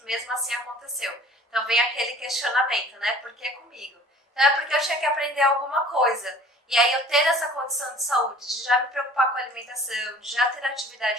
mesmo assim aconteceu. Então vem aquele questionamento, né? Por que comigo? Então é porque eu tinha que aprender alguma coisa. E aí eu ter essa condição de saúde, de já me preocupar com a alimentação, de já ter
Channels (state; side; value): normal; both; correlation 0.48